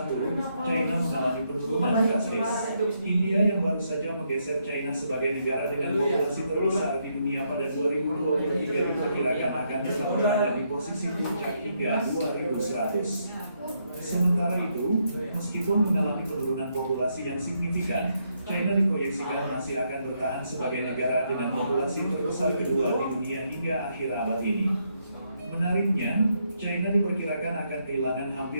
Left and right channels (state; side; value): inverted; both; correlation -0.77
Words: China mengalami penurunan drastis. India yang baru saja menggeser China sebagai negara dengan populasi terbesar di dunia pada 2023 diperkirakan akan tetap berada di posisi puncak hingga 2100. Sementara itu, meskipun mengalami penurunan populasi yang signifikan, China diproyeksikan masih akan bertahan sebagai negara dengan populasi terbesar kedua di dunia hingga akhir abad ini. Menariknya, China diperkirakan akan kehilangan